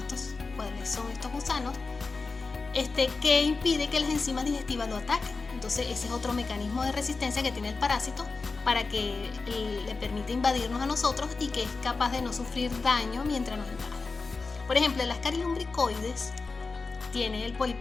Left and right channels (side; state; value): right; quieter; 4.1 dB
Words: son estos gusanos, que impide que las enzimas digestivas lo ataquen. Entonces ese es otro mecanismo de resistencia que tiene el parásito para que le permita invadirnos a nosotros y que es capaz de no sufrir daño mientras nos invade. Por ejemplo, el Ascaris lumbricoides tiene el